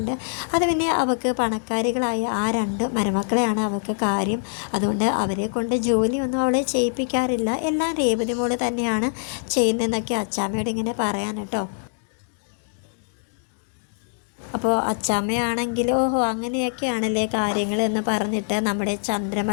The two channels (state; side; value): silent; right; digital silence